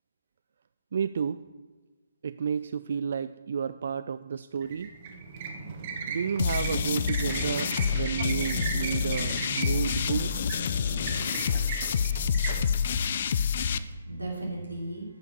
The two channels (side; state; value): both; inverted; correlation -0.67